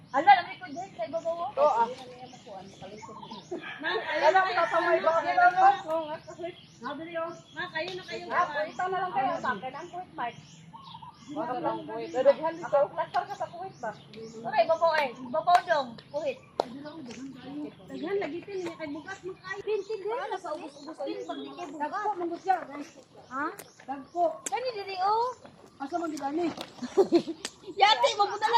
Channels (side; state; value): both; identical; correlation 1.00